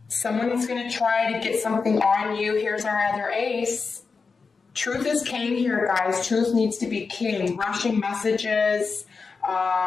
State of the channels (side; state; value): right; quieter; 4.8 dB